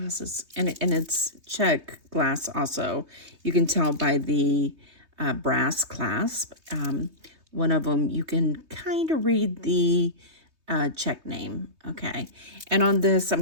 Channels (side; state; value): left; late; 3.2 ms